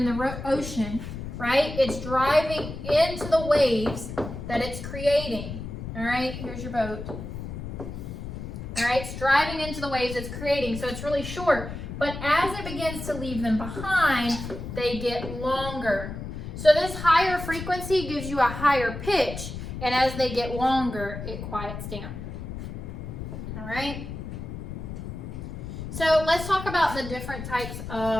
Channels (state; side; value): noise; left; rumble, 8 dB below the sound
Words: the ocean, right? It's driving into the waves that it's creating. All right? Here's your boat. All right? It's driving into the waves it's creating, so it's really short. But as it begins to leave them behind, they get longer. So this higher frequency gives you a higher pitch, and as they get longer, it quiets down. All right? So let's talk about the different types